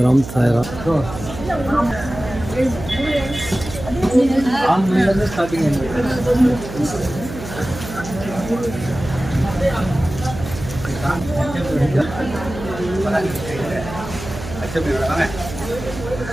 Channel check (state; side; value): noise; right; hum, 10 dB below the sound